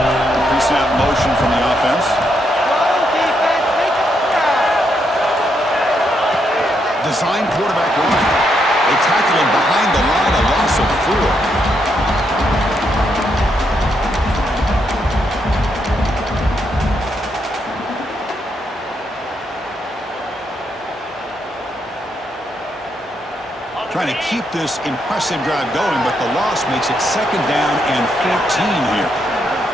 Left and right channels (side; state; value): both; normal; correlation 0.78